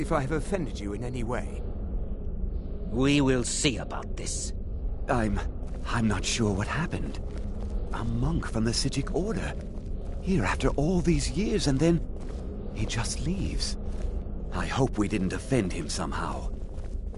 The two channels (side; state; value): both; identical; correlation 1.00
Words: I have offended you in any way. We will see about this. I'm not sure what happened. A monk from the Sijic Order. Here after all these years, and then he just leaves. I hope we didn't offend him somehow.